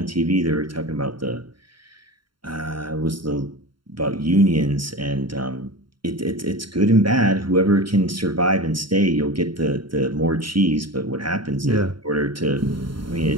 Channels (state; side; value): late; left; 0.73 ms